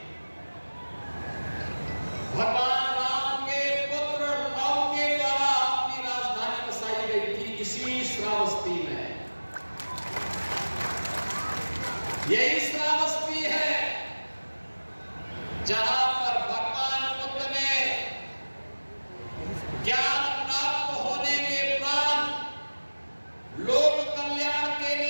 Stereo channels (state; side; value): inverted; both; correlation -1.00